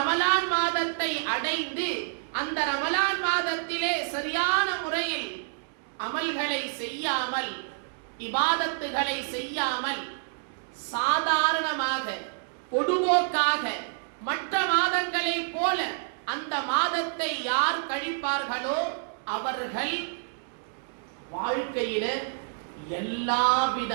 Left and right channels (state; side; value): silent; left; digital silence